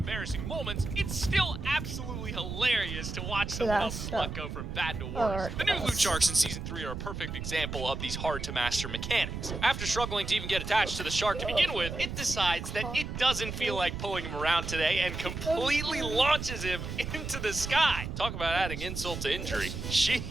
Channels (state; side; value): noise; right; rumble, 6 dB below the sound